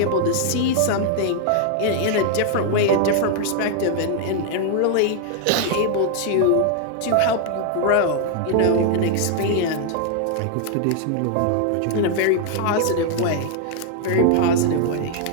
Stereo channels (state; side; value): different; both; correlation 0.00